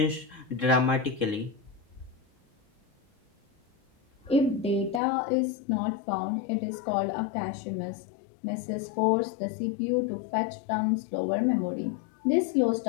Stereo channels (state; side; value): drops out; right; at 5.0 s